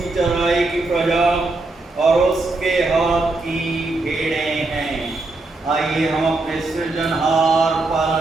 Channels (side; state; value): left; quieter; 3.2 dB